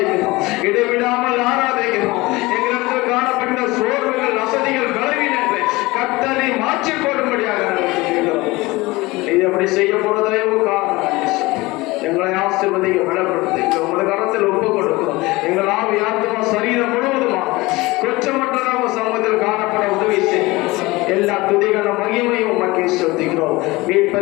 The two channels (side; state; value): right; quieter; 21.6 dB